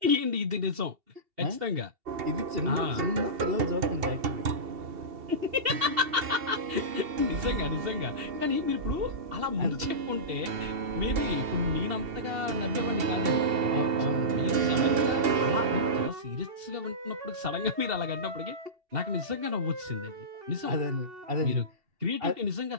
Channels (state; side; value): late; left; 2.7 ms